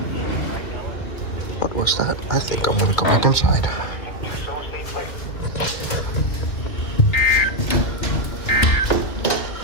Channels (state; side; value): late; right; 2.5 ms